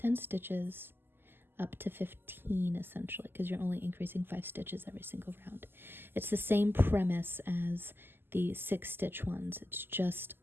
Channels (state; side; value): late; left; 0.10 ms